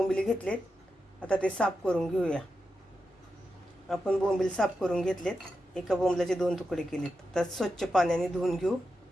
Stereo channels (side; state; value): both; normal; correlation 0.89